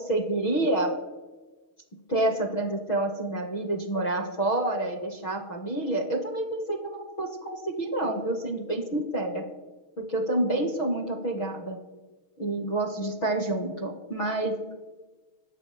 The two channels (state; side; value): late; right; 6.3 ms